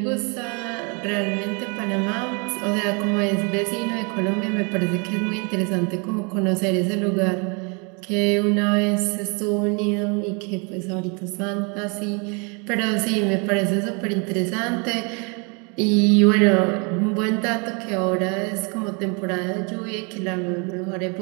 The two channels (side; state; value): left; quieter; 33.2 dB